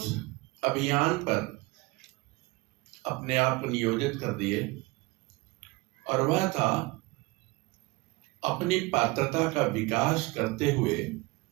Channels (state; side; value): quieter; left; 22.9 dB